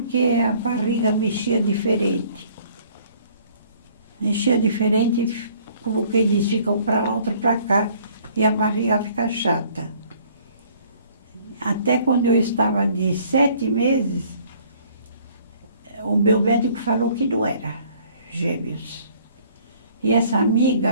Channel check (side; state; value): both; inverted; correlation -0.57